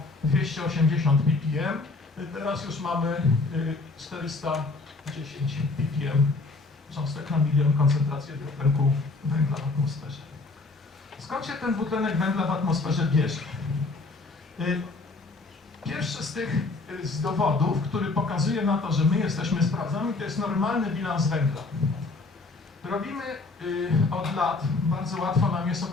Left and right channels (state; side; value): quieter; right; 3.6 dB